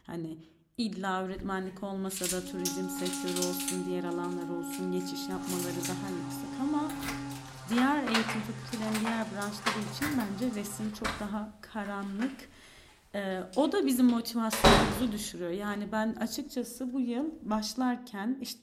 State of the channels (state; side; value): identical; both; correlation 1.00